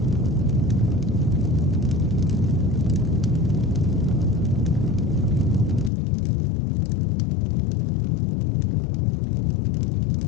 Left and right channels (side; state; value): right; drops out; at 5.9 s